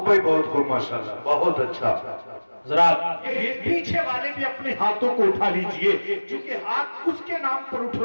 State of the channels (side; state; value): both; inverted; correlation -1.00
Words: ہے، بہت خوب، ماشاءاللہ، بہت اچھا۔ حضرات پیچھے والے بھی اپنے ہاتھوں کو اٹھا لیجئے، چونکہ ہاتھ اس کے نام پر اٹھ